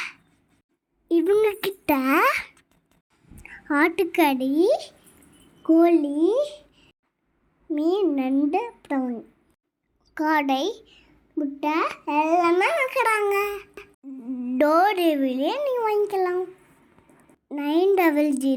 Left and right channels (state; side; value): identical; both; correlation 1.00